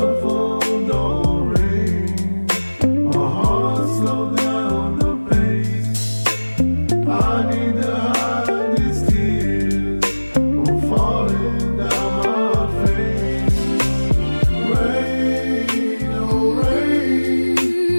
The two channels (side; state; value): both; inverted; correlation -1.00